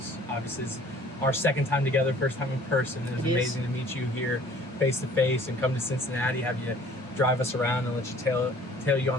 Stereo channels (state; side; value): normal; both; correlation 0.52